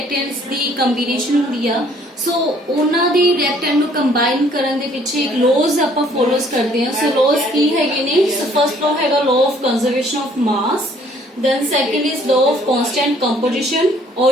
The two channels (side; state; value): both; normal; correlation 0.60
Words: ਦੀ combination ਹੁੰਦੀ ਆ। ਸੋ ਉਹਨਾਂ ਦੀ ਰਿਐਕਟੈਂਟ ਨੂੰ ਕੰਬਾਈਨ ਕਰਨ ਦੇ ਪਿੱਛੇ ਇੱਕ ਲੋਜ਼ ਆਪਾਂ ਫੋਲੋਸ ਕਰਦੇ ਹਾਂ। ਸੋ ਲੋਜ਼ ਕੀ ਹੈਗੇ ਨੇ? ਸੋ ਫਰਸਟ ਲੋ ਹੈਗਾ law of conservation of mass, then second is law of constant composition, or